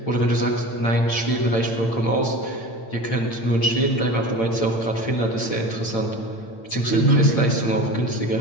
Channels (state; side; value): late; right; 8.9 ms